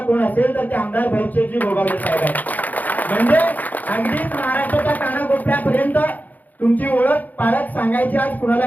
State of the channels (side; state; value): right; late; 0.081 ms